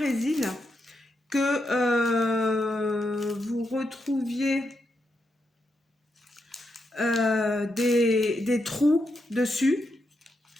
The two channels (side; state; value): both; normal; correlation 0.83